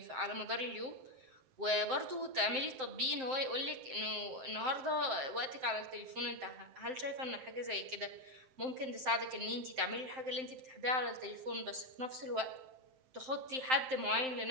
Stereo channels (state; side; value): late; left; 7.7 ms